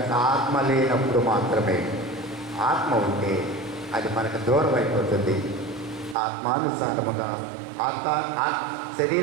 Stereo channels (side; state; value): left; drops out; at 6.2 s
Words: ఆత్మ లేనప్పుడు మాత్రమే. ఆత్మ ఉంటే అది మనకు దూరం అయిపోతుంది. ఆత్మానుసారముగా